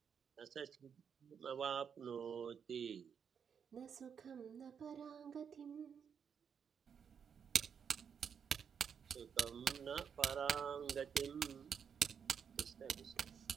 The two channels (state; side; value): quieter; left; 7.2 dB